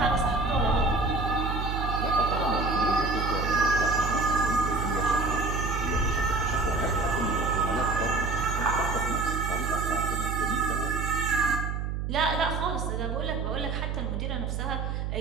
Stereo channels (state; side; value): noise; right; hum, 2 dB below the sound